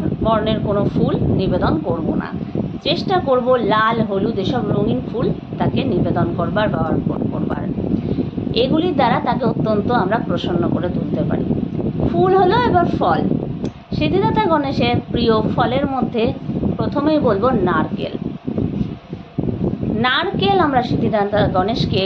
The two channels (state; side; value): identical; both; correlation 1.00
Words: বর্ণের কোনো ফুল নিবেদন করব না, চেষ্টা করব লাল হলুদ এসব রঙিন ফুল তাকে নিবেদন করবার বা অর্পণ করবার। এগুলির দ্বারা তাকে অত্যন্ত আমরা প্রসন্ন করে তুলতে পারি। ফুল হলো এবার ফল। সিদ্ধিদাতা গণেশের প্রিয় ফলের মধ্যে প্রথমেই বলবো নারকেল। নারকেল আমরা সিদ্ধিদাতা গণেশকে